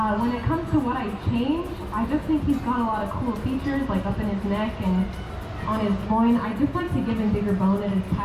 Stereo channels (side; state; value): both; identical; correlation 1.00